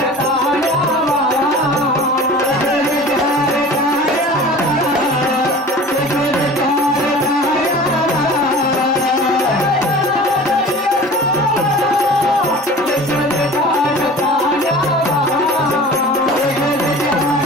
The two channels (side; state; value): both; normal; correlation 0.40